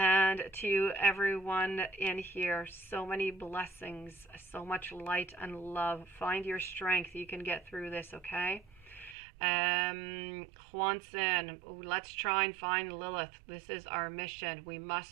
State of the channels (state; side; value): drops out; left; at 9.2 s